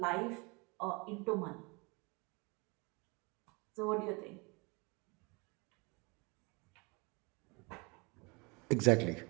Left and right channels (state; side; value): quieter; left; 28.9 dB